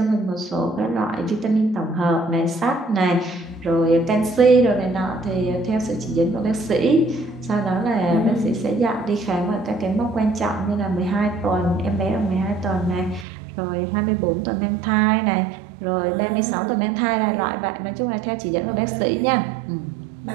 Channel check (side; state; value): left; drops out; at 13.2 s